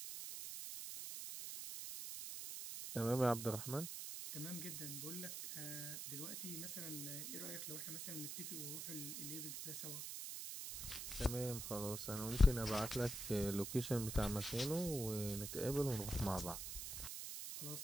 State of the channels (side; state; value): right; noise; hiss, 6 dB below the sound